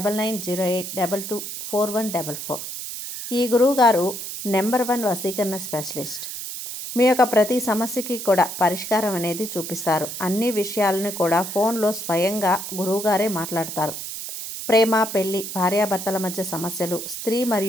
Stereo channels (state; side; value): noise; right; hiss, 7 dB below the sound